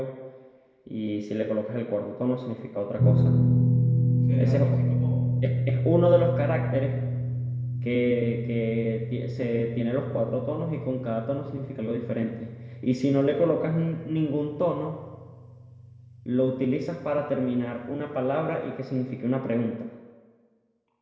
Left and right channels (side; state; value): both; identical; correlation 1.00